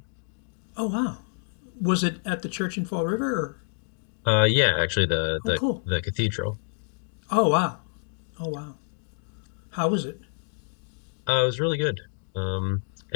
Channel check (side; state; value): right; silent; digital silence